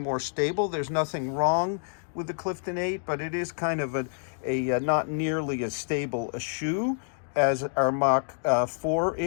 stable. There's nothing wrong with the Clifton 8, but it is kind of a not nearly as stable a shoe as our Mach 4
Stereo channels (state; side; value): silent; right; digital silence